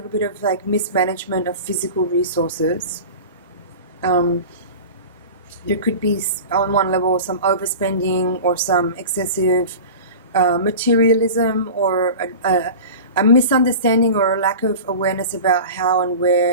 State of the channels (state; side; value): inverted; both; correlation -0.34